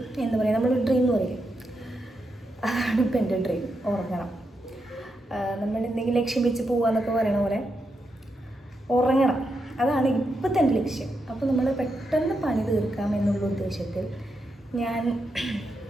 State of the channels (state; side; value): normal; both; correlation 0.84